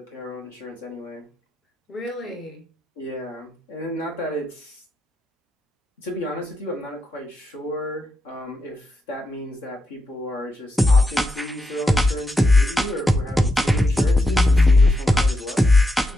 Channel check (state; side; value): normal; both; correlation 0.84